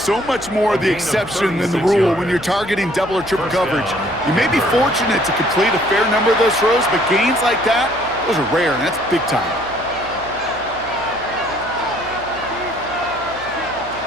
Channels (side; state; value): left; noise; hum, 20 dB below the sound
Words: much more the exception than the rule when you're targeting double or triple coverage. You may be fortunate to complete a fair number of those throws, but gains like that, those are rare, and that's big time.